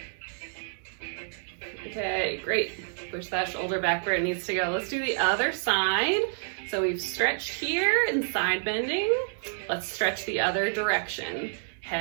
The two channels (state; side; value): silent; left; 59 dB below the other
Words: Okay, great. Push that shoulder back where it needs to go. Let's do the other side. So we've stretched here in side bending. Let's stretch the other direction.